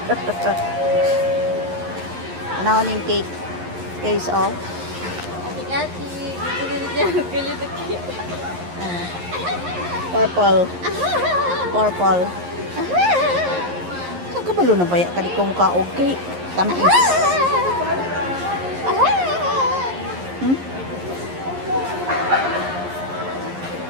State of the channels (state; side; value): late; left; 11 ms